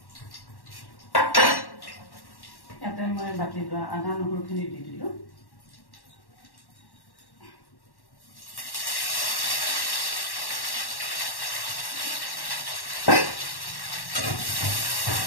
ইয়াতে মই বাটি লোৱা আদা নহৰুখিনি দি দিলোঁ।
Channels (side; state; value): right; late; 1.1 ms